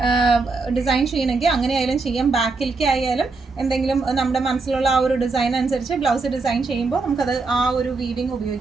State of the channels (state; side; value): quieter; left; 4.0 dB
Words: ഡിസൈൻ ചെയ്യണമെങ്കിൽ അങ്ങനെ ആയാലും ചെയ്യാം. ബാക്കിലേക്ക് ആയാലും എന്തെങ്കിലും നമ്മുടെ മനസ്സിലുള്ള ആ ഒരു ഡിസൈൻ അനുസരിച്ച് ബ്ലൗസ് ഡിസൈൻ ചെയ്യുമ്പോൾ നമുക്കത് ആ ഒരു വീവിങ്